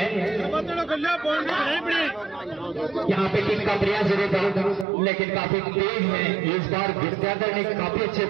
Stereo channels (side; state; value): left; drops out; at 4.9 s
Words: यहाँ पे किक का प्रयास जरूर था लेकिन काफी तेज है इस बार। विद्याधर ने काफी अच्छे